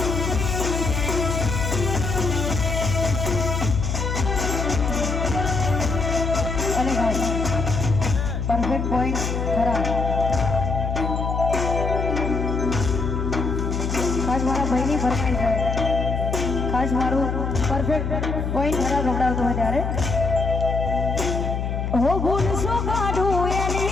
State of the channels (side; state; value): left; noise; hum, 2 dB below the sound